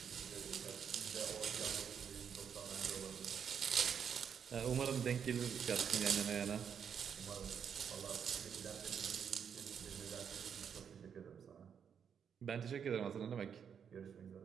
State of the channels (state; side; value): quieter; left; 7.6 dB